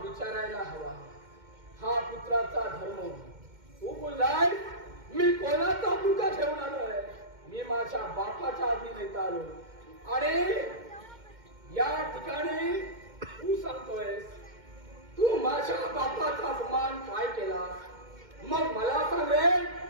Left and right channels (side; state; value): left; late; 2.1 ms